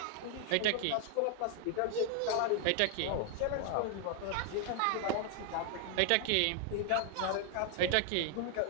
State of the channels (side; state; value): both; different; correlation 0.00